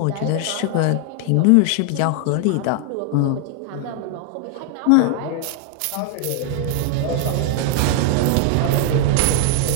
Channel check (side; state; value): both; different; correlation 0.00